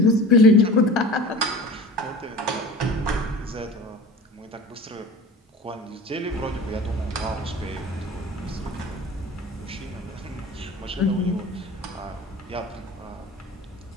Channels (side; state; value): both; normal; correlation 0.37